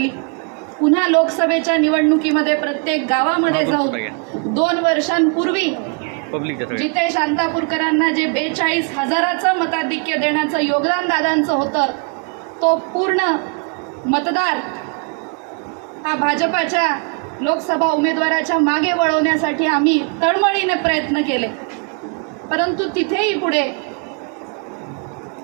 पुन्हा लोकसभेच्या निवडणुकीमध्ये प्रत्येक गावामध्ये जाऊन 2 वर्षांपूर्वी जिथे शांतापूरकरांना जे 42,000चं मताधिक्य देण्याचं योगदान दादांचं होतं, तो पूर्ण मतदार हा भाजपाच्या लोकसभा उमेदवाराच्या मागे वळवण्यासाठी आम्ही तळमळीने प्रयत्न केले, परंतु तिथेही पुढे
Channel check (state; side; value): quieter; left; 38.0 dB